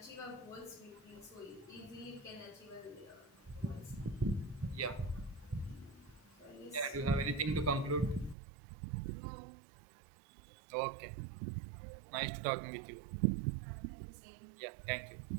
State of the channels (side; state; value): left; drops out; at 8.3 s